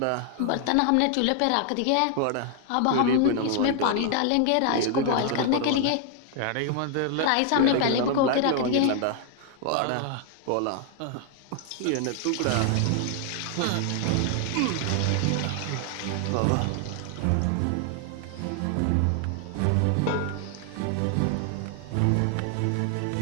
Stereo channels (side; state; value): both; different; correlation 0.00